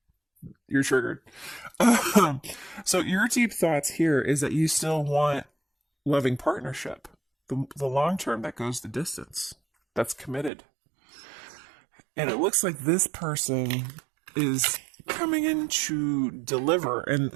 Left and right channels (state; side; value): drops out; left; at 10.5 s